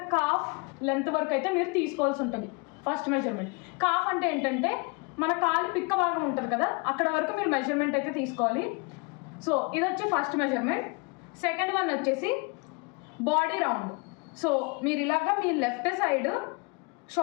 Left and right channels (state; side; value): quieter; right; 30.4 dB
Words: కాఫ్ లెంత్ వరకు అయితే మీరు తీసుకోవాల్సి ఉంటుంది. ఫస్ట్ మెజర్మెంట్ కాఫ్ అంటే ఏంటంటే మన కాలు పిక్క భాగం ఉంటుంది కదా, అక్కడ వరకు మీరు మెజర్మెంట్ అయితే తీసుకోవాలి. సో ఇది వచ్చి ఫస్ట్ మెజర్మెంట్. సెకండ్ వన్ వచ్చేసి బాడీ రౌండ్. సో మీరు ఇలాగా మీ లెఫ్ట్ సైడ్